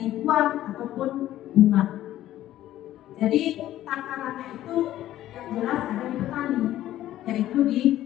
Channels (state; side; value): quieter; right; 13.5 dB